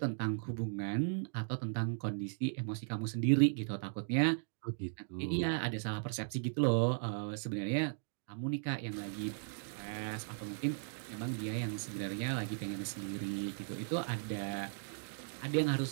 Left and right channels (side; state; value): left; silent; digital silence